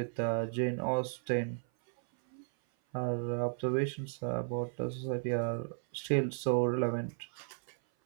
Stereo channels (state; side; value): silent; left; 55 dB below the other